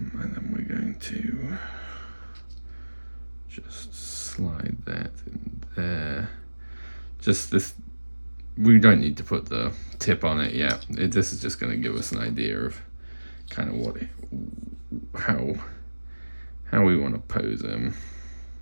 then we're going to just slide that in there. Just this, we don't need to put the tip on it yet. This is just going to give us an idea of kind of what how we want to pose him.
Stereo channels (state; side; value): inverted; both; correlation -1.00